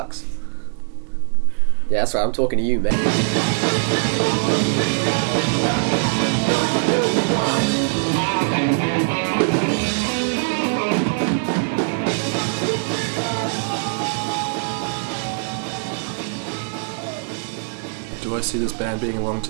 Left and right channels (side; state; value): left; silent; digital silence